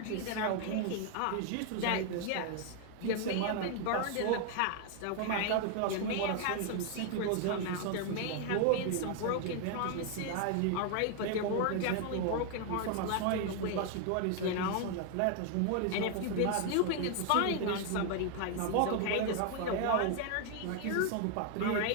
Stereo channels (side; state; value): both; different; correlation 0.00